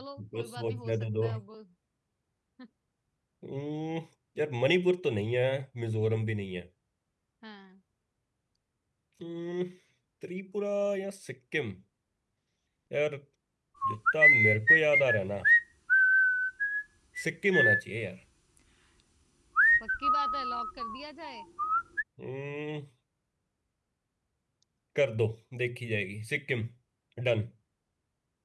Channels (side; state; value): both; identical; correlation 1.00